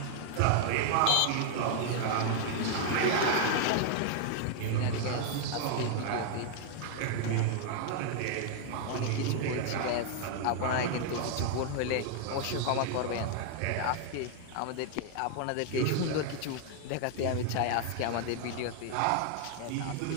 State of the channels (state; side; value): different; both; correlation 0.00